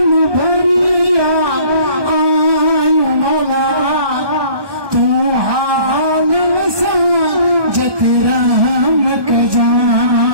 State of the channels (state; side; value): late; left; 1.2 ms